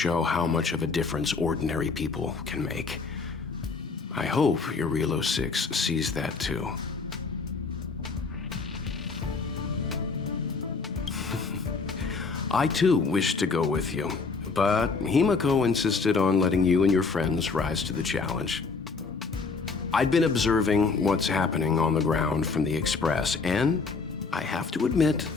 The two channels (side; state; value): right; quieter; 4.5 dB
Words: how much of a difference ordinary people can make. I hope Eurilo 6 sees that too. I too wish to go with you, but Himiko insisted on letting you and your friends rise to the challenge. I'd been observing what's happening on the ground from the Express, and I have to admit